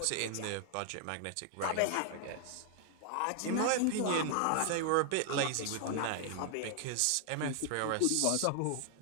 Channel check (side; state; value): both; different; correlation 0.00